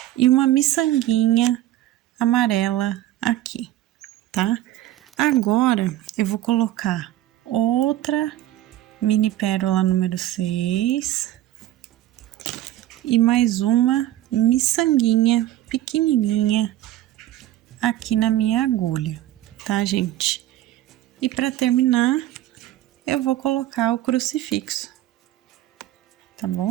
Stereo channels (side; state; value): left; quieter; 13.9 dB